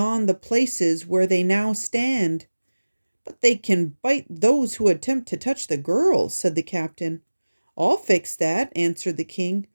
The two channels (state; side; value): inverted; both; correlation -1.00